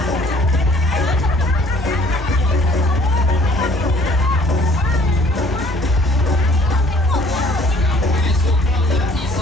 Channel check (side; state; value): both; normal; correlation 0.57